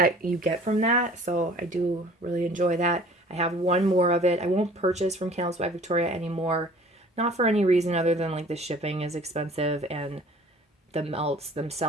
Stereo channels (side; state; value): both; normal; correlation 0.49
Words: you get from that, so I do really enjoy that. I have one more of it. I won't purchase from Candles by Victoria anymore. Not for any reason other than like the shipping is expensive and the melts